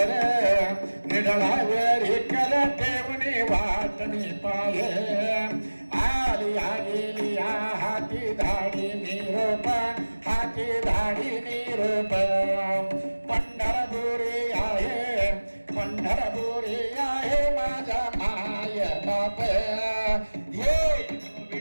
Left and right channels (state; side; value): inverted; both; correlation -1.00